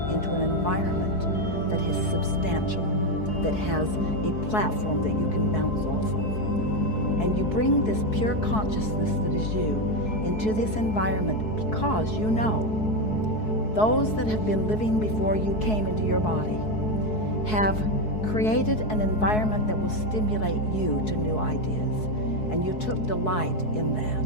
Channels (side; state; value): right; late; 4.7 ms